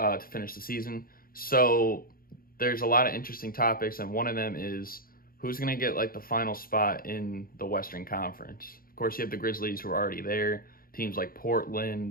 finish the season. So there's a lot of interesting topics, and one of them is who's going to get like the final spot in the Western Conference. Of course, you have the Grizzlies who are already there. Teams like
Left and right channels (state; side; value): late; right; 0.42 ms